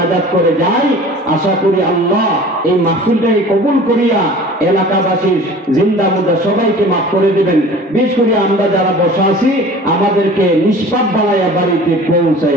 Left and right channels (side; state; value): both; normal; correlation 0.43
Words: করে যাই, আশা করি আল্লাহ এই মাহফিলটাকে কবুল করিয়া এলাকাবাসীর জিন্দা মুর্দা সবাইকে মাফ করে দিবেন। বিশেষ করে আমরা যারা বসা আছি, আমাদেরকে নিষ্পাপ বানাইয়া বাড়িতে